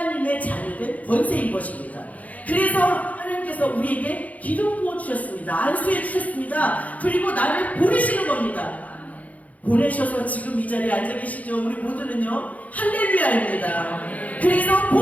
자녀된 권세인 것입니다. 그래서 하나님께서 우리에게 기름 부어주셨습니다. 안수해 주셨습니다. 그리고 나를 보내시는 겁니다. 보내셔서 지금 이 자리에 앉아 계시죠. 우리 모두는요 할렐루야입니다. 그래서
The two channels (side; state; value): right; late; 0.073 ms